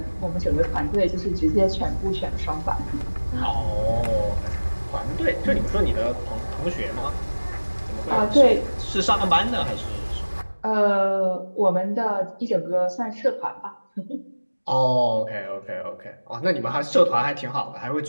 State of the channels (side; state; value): both; inverted; correlation -1.00